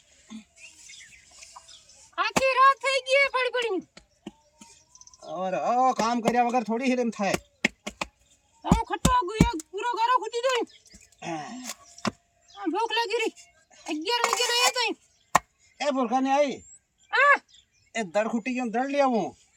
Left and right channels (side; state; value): both; identical; correlation 1.00